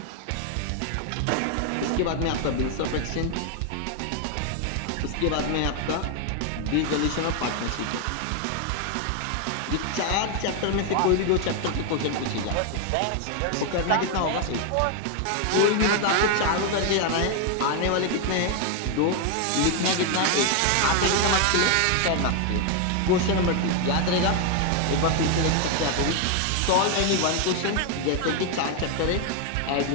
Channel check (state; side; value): different; both; correlation 0.01